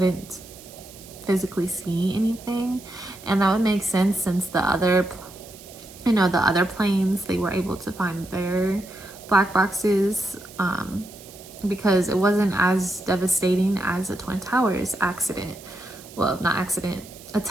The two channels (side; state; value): right; noise; hiss, 19 dB below the sound